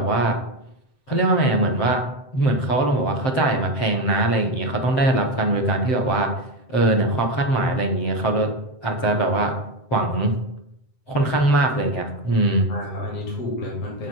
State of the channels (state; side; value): late; right; 7.7 ms